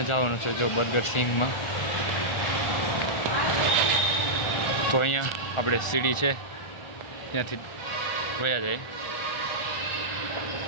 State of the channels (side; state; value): right; late; 1.4 ms